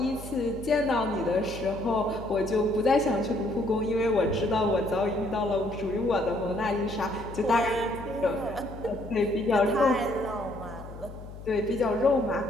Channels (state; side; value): noise; left; hum, 14 dB below the sound